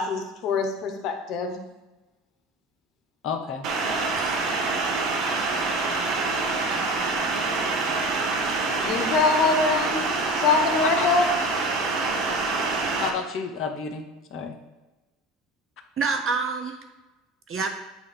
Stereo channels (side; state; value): both; normal; correlation 0.31